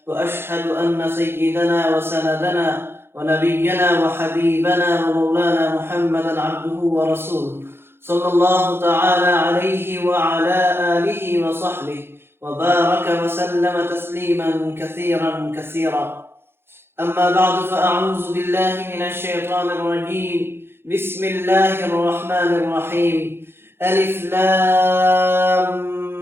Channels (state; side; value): late; left; 0.11 ms